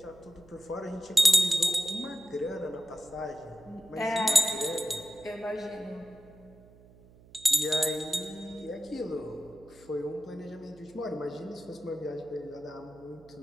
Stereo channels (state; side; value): noise; right; hum, 24 dB below the sound